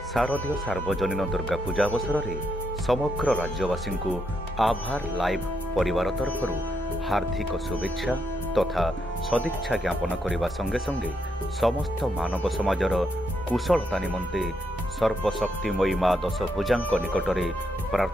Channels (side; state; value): both; normal; correlation 0.79